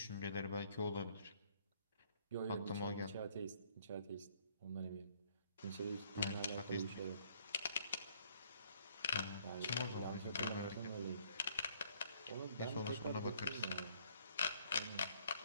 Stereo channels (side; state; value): both; inverted; correlation -0.63